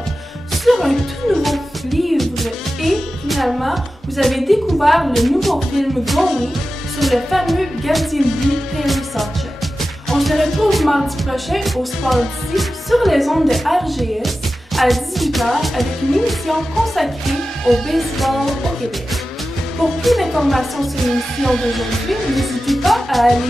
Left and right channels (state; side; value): normal; both; correlation 0.93